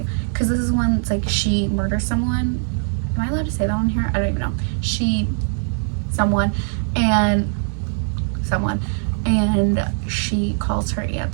because this is one that's like she murders someone. Am I allowed to say that on here? I don't even know. Someone, and she calls her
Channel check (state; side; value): silent; left; 65 dB below the other